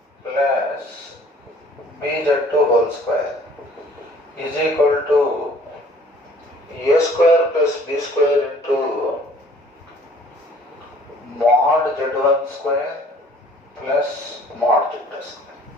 plus BZ2 whole square is equal to A square plus B square into mod Z1 square plus mod Z2 square.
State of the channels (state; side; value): normal; both; correlation 0.54